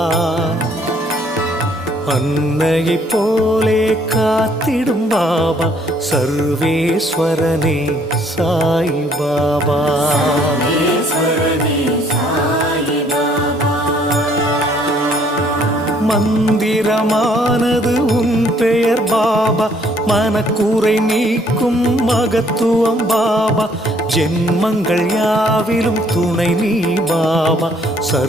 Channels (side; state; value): both; normal; correlation 0.64